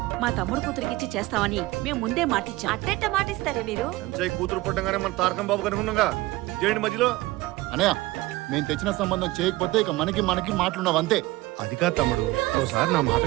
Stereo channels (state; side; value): quieter; left; 19.3 dB